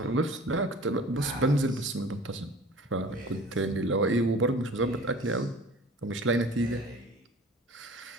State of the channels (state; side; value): normal; both; correlation 0.43